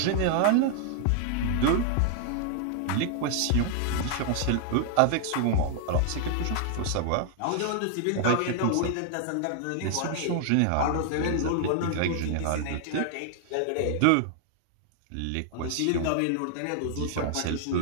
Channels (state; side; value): different; both; correlation 0.00